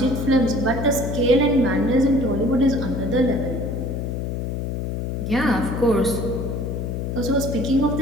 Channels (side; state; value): left; noise; hum, 3 dB below the sound